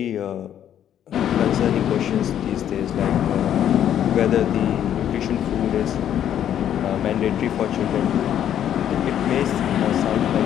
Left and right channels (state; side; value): quieter; right; 10.3 dB